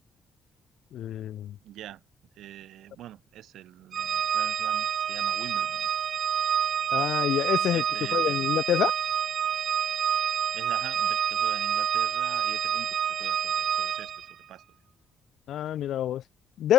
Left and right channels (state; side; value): normal; both; correlation 0.63